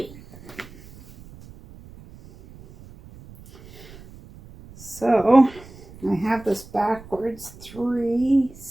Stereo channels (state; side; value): noise; right; rumble, 20 dB below the sound